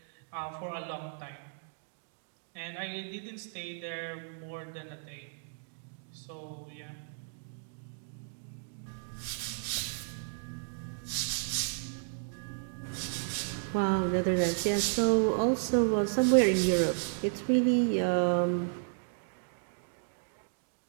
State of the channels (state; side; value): silent; left; digital silence